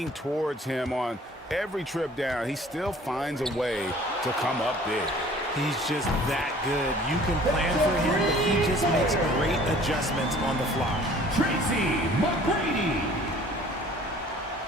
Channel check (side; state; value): both; normal; correlation 0.52